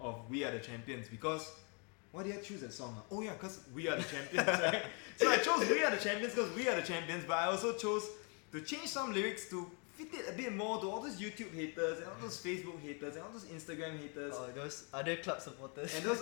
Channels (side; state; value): right; quieter; 36.3 dB